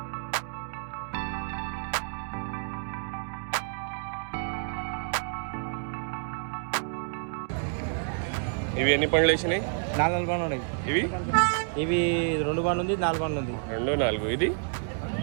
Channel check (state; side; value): silent; left; 58 dB below the other